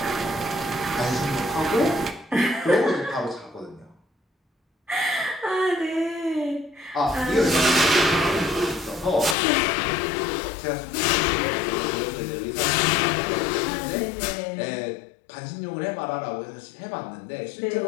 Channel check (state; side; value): drops out; right; at 9.3 s